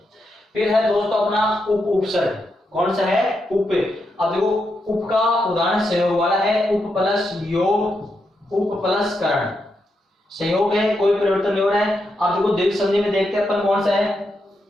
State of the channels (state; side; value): normal; both; correlation 0.83